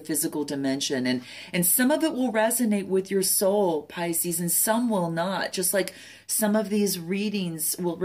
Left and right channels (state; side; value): identical; both; correlation 1.00